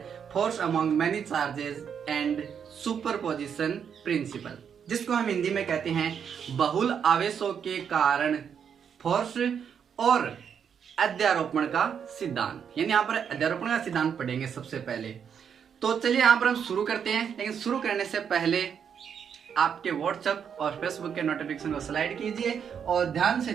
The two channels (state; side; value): quieter; left; 7.6 dB